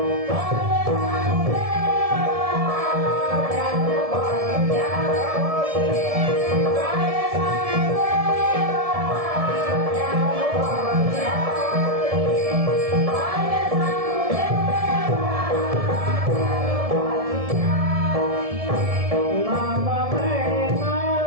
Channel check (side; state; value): left; late; 1.7 ms